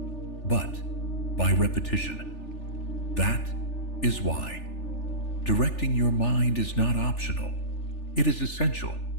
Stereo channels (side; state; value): right; late; 3.4 ms